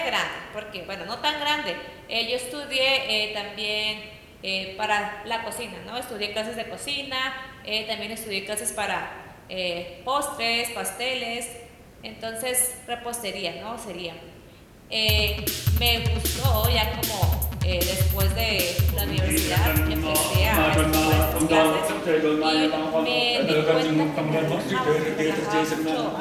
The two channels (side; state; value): both; identical; correlation 1.00